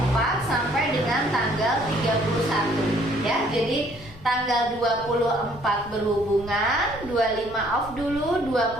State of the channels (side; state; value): left; noise; rumble, 19 dB below the sound